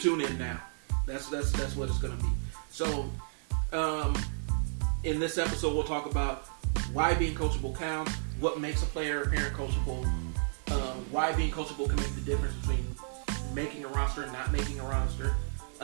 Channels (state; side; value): silent; left; digital silence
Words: in now. That's what it's going to be. So, in this episode, we'll talk about why being coachable counts, what makes a player or parent coachable, why being coachable can make the difference between making a roster and not making a roster,